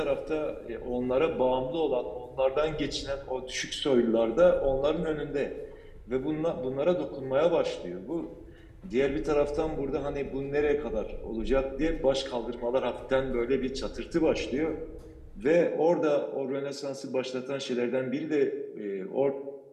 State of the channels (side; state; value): both; identical; correlation 1.00